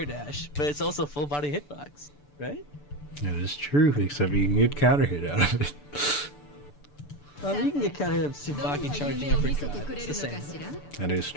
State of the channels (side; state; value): right; late; 6.9 ms